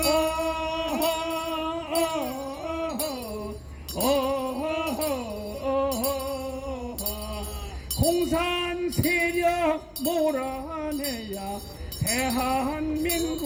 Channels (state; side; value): identical; both; correlation 1.00